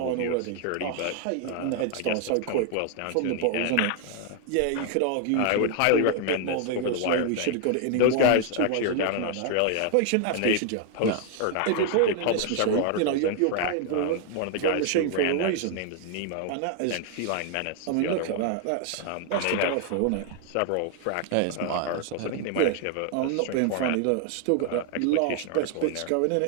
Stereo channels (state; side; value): different; both; correlation 0.00